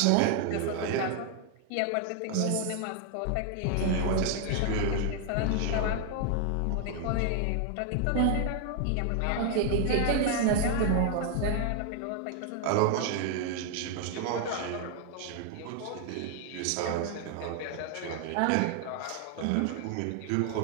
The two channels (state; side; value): different; both; correlation 0.00